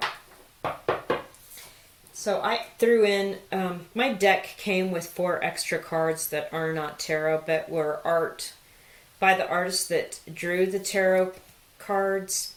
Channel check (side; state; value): both; identical; correlation 1.00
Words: So I threw in, my deck came with 4 extra cards that are not tarot, but were art by the artist that drew the tarot cards